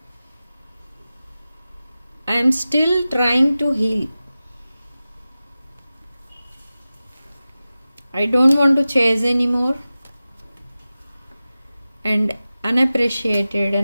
I'm still trying to heal. I don't want to chase anymore and unappreciated.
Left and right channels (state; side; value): inverted; both; correlation -0.95